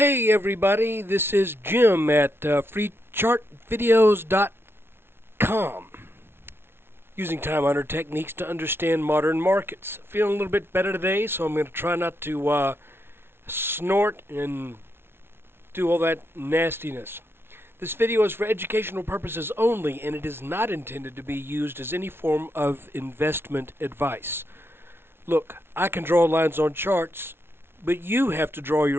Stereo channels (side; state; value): left; late; 0.11 ms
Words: everybody, this is Jim at freechartvideos.com, using time-honored techniques to understand modern markets. Feeling a little bit better today, so I'm going to try not to snort and do all that nastiness. This video is for educational purposes only, and it is not intended to be used as any form of investment advice. Look, I can draw lines on charts, but you have to draw